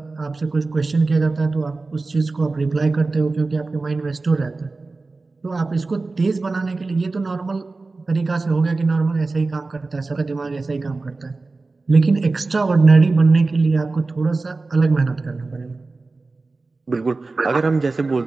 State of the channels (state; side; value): quieter; left; 3.6 dB